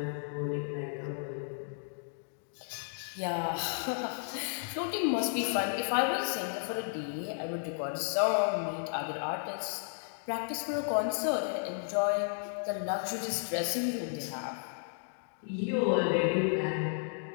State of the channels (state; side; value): silent; right; digital silence